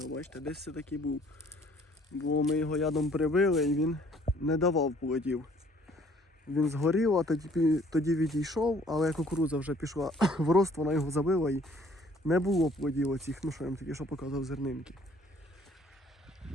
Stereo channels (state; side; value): normal; both; correlation 0.58